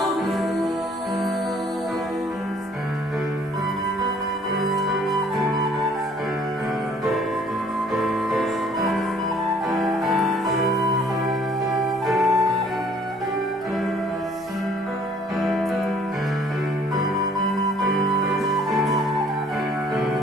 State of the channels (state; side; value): normal; both; correlation 0.58